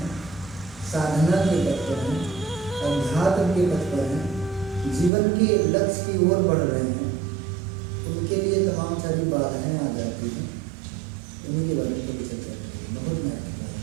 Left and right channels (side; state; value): left; drops out; at 5.1 s